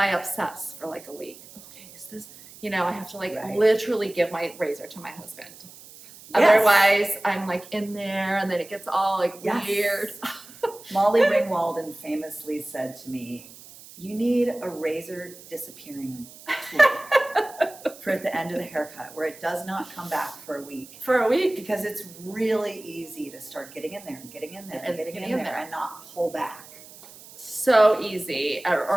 obsess for like a week. Okay, is this, I have to like Right. literally give my razor to my husband. Yes. Otherwise, I'm like in there and then it gets all like Yes. weird. Molly Ringwalden famously said to me, "You need a razor disappearing tool for at the end of the haircut where it does not come back for a week." For a week. Because it's really easy to start getting in there and getting in there and getting in there and not pull back. So easy,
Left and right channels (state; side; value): noise; right; hiss, 19 dB below the sound